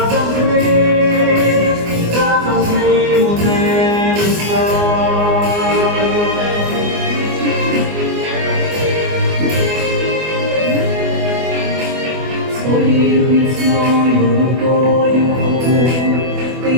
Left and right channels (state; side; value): late; left; 24 ms